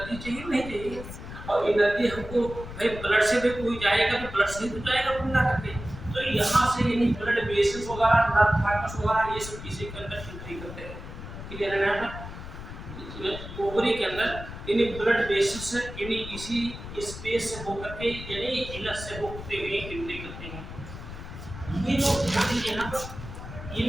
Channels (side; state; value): left; noise; rumble, 11 dB below the sound